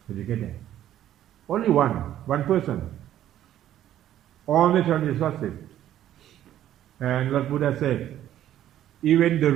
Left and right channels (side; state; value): left; quieter; 12.0 dB